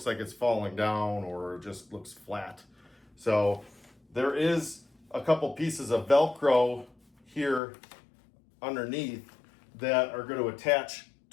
like it's falling down or it just looks flat. So there is a couple pieces of Velcro here underneath that are going to attach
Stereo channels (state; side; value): drops out; right; at 7.6 s